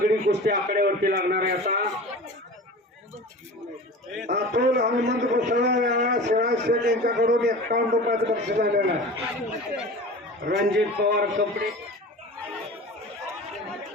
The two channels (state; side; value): normal; both; correlation 0.36